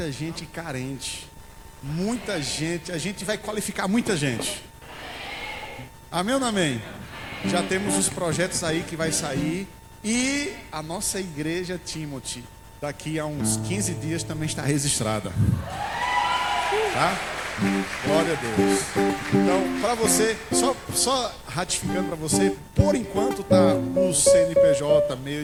gente carente. Muita gente, a gente vai qualificar muita gente. Amém ou não amém? Já temos os projetos aí que vai sair. E a nossa igreja Timothy, daqui a uns 15 dias também está registrada. Tá? Glória a Deus. Então, para você, só ratificando para você, por enquanto tá o CNPJ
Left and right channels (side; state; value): both; identical; correlation 1.00